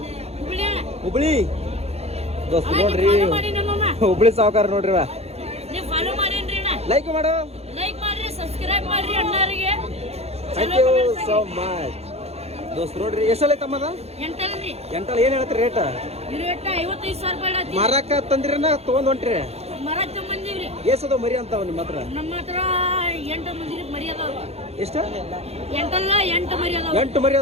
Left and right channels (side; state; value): left; late; 0.30 ms